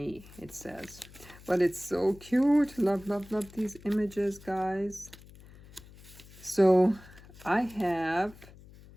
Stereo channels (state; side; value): noise; left; hum, 21 dB below the sound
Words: it says. But it's so cute. Love, love, love these images, guys. So I have